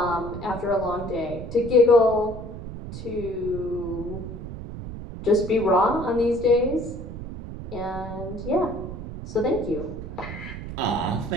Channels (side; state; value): right; noise; rumble, 9 dB below the sound